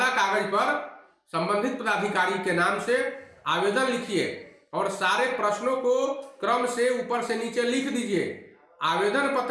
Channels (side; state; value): both; identical; correlation 1.00